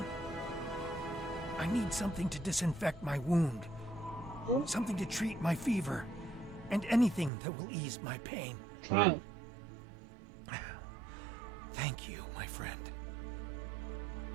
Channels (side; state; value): left; drops out; at 7.3 s